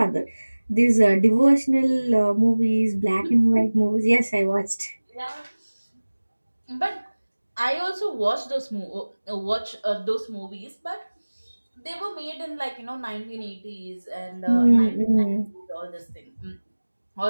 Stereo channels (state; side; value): inverted; both; correlation -1.00